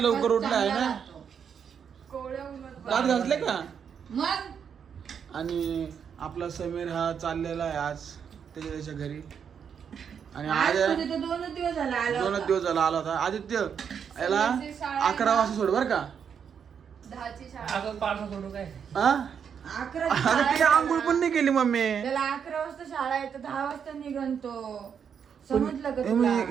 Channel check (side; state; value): left; quieter; 7.4 dB